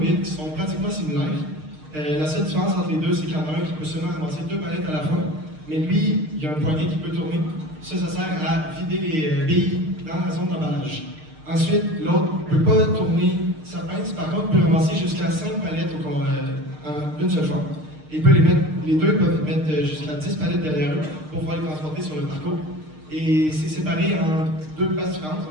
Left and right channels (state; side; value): late; left; 6.5 ms